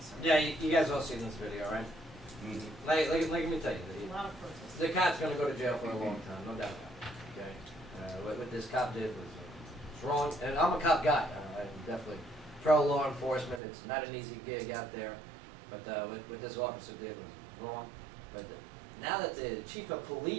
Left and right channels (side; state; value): left; drops out; at 13.6 s